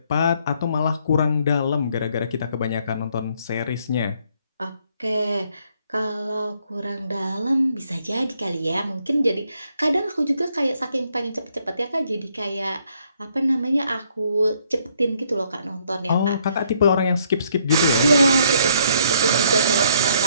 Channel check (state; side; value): inverted; both; correlation -0.68